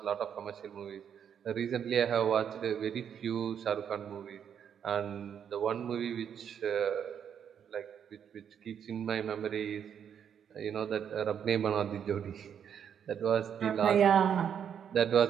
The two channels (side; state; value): left; quieter; 8.3 dB